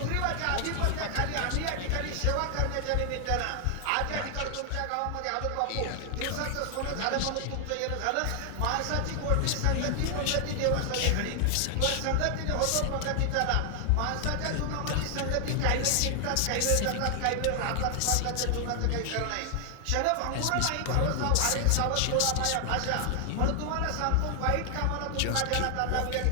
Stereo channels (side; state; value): both; different; correlation 0.00